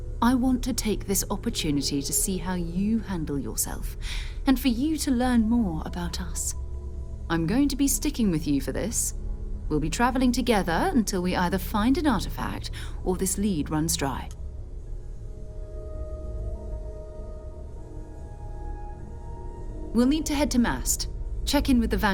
I want to take this opportunity to see how you handle yourself, and for you to learn more about us. I'm going to be sticking with you for this. We'll be traveling together until we either find an artifact or this lead runs dry. We'll need to head to Mast. Check in with the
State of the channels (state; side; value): identical; both; correlation 1.00